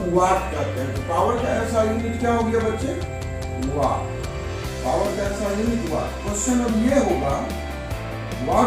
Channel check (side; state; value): both; identical; correlation 1.00